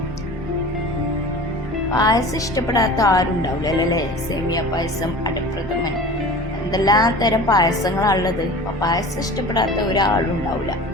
പായസം ഇഷ്ടപ്പെടാത്ത ആരും ഉണ്ടാവില്ല അല്ലേ? സേമിയ പായസം, അടപ്രഥമൻ, എന്തെല്ലാം തരം പായസങ്ങളാണുള്ളത്. അപ്പോൾ പായസം ഇഷ്ടപ്പെടാത്ത ഒരാളും ഉണ്ടാവില്ല.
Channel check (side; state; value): both; normal; correlation 0.38